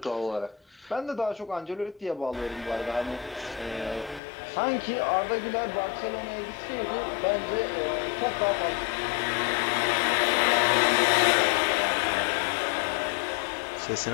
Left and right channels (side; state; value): right; drops out; at 4.2 s